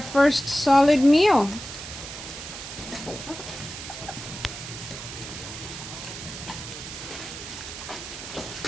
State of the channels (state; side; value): noise; right; hiss, 10 dB below the sound